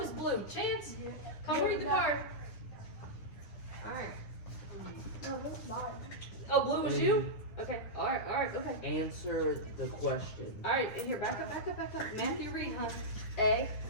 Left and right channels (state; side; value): late; right; 9.7 ms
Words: blue? Chance? Come read the card. All right. No, that's mine. Oh, blue was you? Okay, alright, okay. Answer the question. Alright, in here, back up. Matthew, read, huh? A.